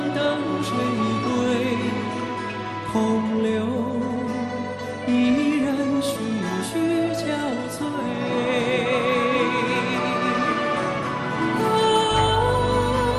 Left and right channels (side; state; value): both; identical; correlation 1.00